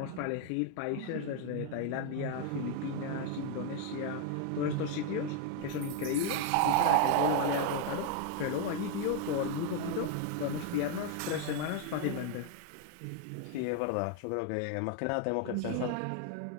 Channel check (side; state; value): both; different; correlation 0.01